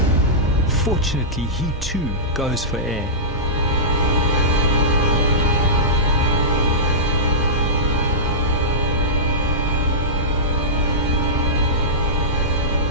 Fortunately, he too goes for air.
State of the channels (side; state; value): both; normal; correlation -0.18